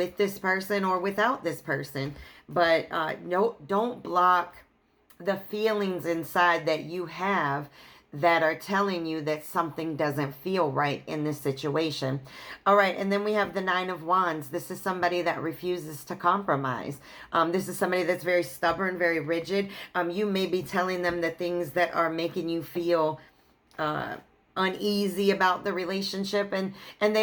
this person or without this person. But no, don't block the feelings inside that you have that are telling you that something doesn't feel right in this situation. All right, and then we have the Nine of Wands. This is somebody that refuses to compromise. This is somebody that's very stubborn, very rigid. You may be telling them the things that are making you feel uneasy about the relationship, and they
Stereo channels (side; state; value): both; identical; correlation 1.00